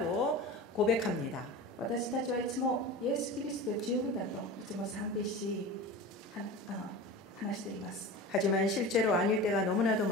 고백합니다. 私たちはいつもイエス・キリストで十分だといつも賛美し話しています。 하지만 실제로 아닐 때가 너무나도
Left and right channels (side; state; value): both; normal; correlation 0.32